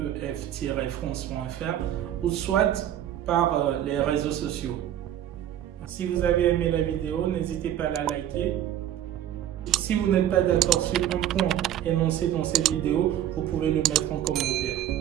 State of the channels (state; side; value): quieter; left; 11.3 dB